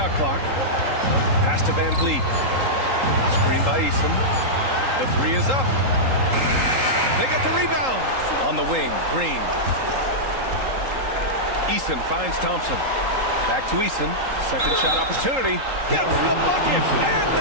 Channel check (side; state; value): left; late; 3.8 ms